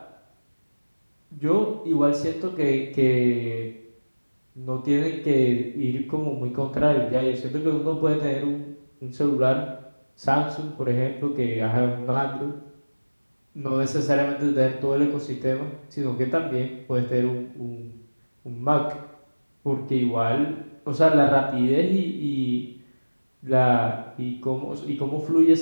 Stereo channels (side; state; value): both; inverted; correlation -1.00